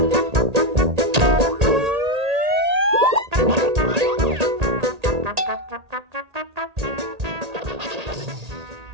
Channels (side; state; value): left; late; 1.8 ms